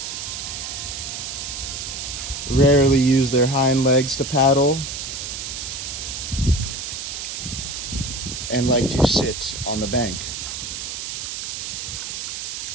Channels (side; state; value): right; noise; hiss, 6 dB below the sound